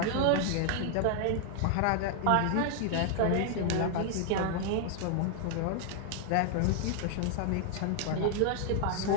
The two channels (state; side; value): different; both; correlation -0.01